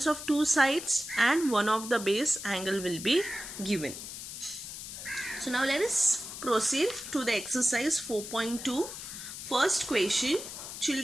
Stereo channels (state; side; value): noise; left; hiss, 9 dB below the sound